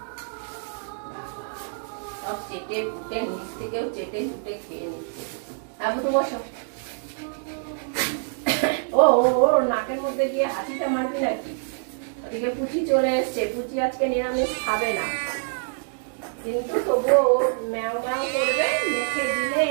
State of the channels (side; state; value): left; silent; digital silence